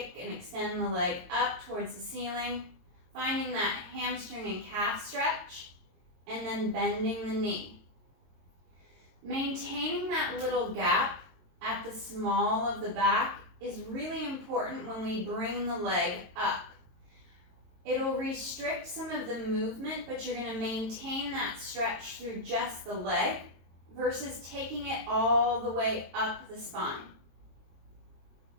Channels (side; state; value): left; late; 22 ms